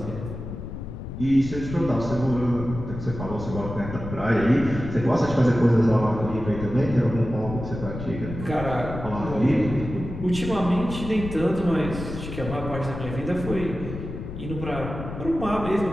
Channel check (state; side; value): noise; left; rumble, 8 dB below the sound